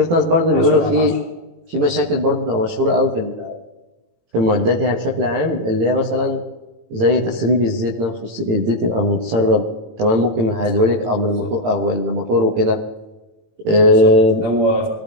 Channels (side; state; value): left; late; 18 ms